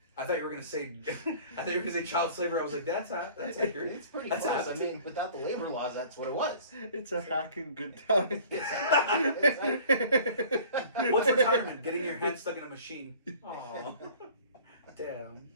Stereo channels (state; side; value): inverted; both; correlation -0.48